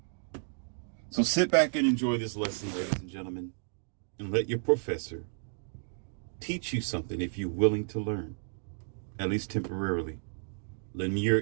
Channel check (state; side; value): silent; left; digital silence